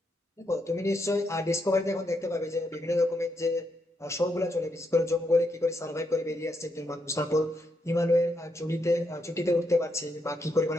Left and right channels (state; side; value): normal; both; correlation 0.80